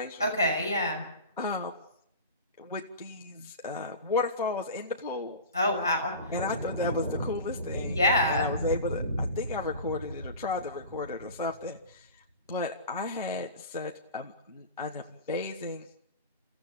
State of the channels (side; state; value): both; inverted; correlation -0.35